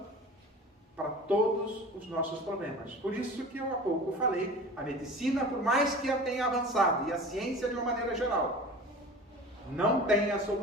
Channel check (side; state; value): both; normal; correlation 0.38